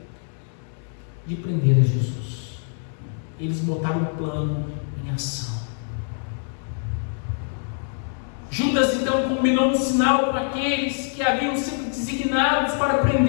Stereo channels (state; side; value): silent; right; digital silence